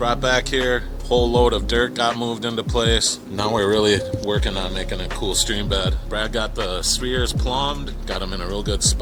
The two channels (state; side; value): identical; both; correlation 1.00